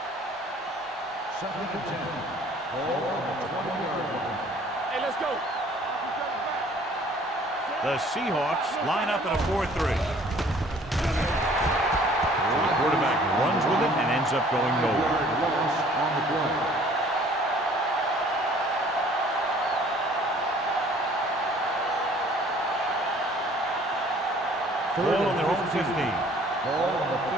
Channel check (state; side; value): normal; both; correlation 0.55